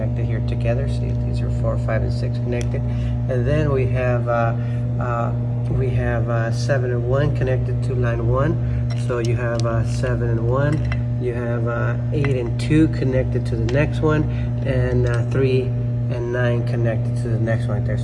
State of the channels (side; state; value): both; identical; correlation 1.00